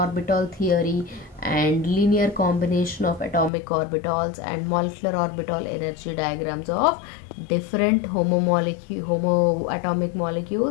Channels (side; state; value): right; drops out; at 3.5 s